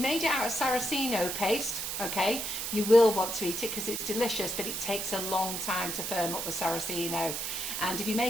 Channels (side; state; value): right; noise; hiss, 3 dB below the sound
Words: it out of Saraceno paste, okay, you will want to eat it because it's delicious, but it takes a long time to firm up with Saraceno. And if you